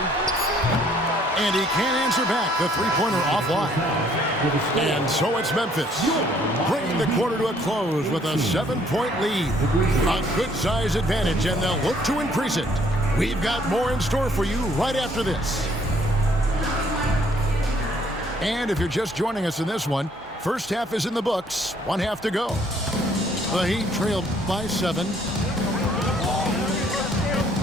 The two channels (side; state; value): both; normal; correlation 0.63